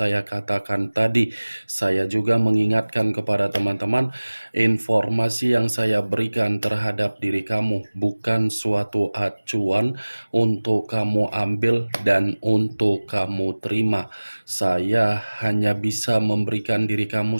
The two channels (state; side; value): inverted; both; correlation -1.00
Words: katakan tadi, saya juga mengingatkan kepada teman-teman, informasi yang saya berikan terhadap diri kamu bukan suatu acuan untuk kamu ambil dan untuk kamu terima. Saya hanya bisa memberikan diri kamu